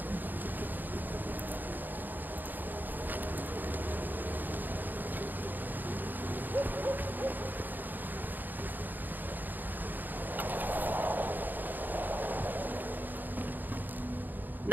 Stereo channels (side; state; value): left; late; 0.088 ms